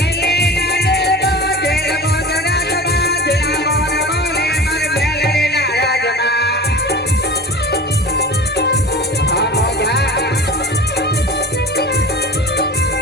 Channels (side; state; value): both; normal; correlation 0.35